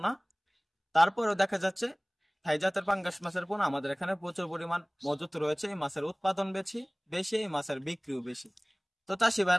তারপরেও দেখা যাচ্ছে থাই জাতের পাঙ্গাস মাছের পোনা আমাদের এখানে প্রচুর পরিমাণ মজুত রয়েছে। এই মাছের উৎপাদন বেশি, এই মাছের বিক্রিও বেশি। তো চাষি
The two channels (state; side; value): identical; both; correlation 1.00